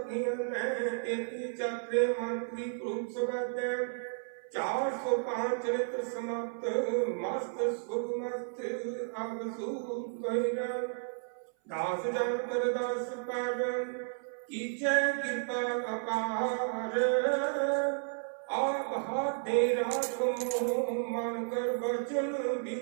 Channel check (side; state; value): left; silent; 56 dB below the other